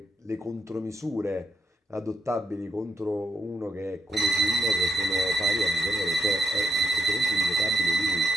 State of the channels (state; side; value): normal; both; correlation 0.80